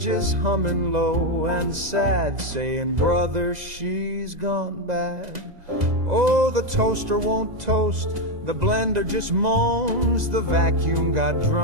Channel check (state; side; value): late; left; 2.0 ms